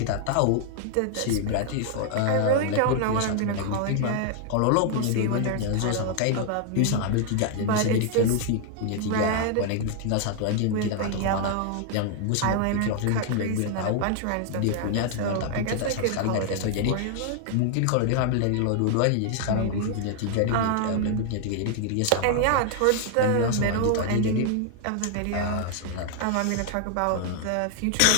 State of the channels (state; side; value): different; both; correlation 0.00